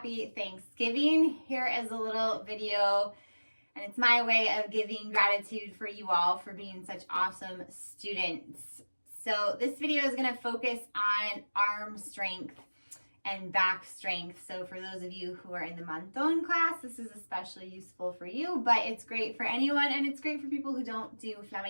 Thanksgiving. Here is a little video and it's my way of giving gratitude for you all for being such awesome students. So this video is going to focus on arm strength and back strength. So for those of you who are in the Monton class, this is especially useful for you, but it's great for anyone and it's great for people who don't do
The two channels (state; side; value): inverted; both; correlation -1.00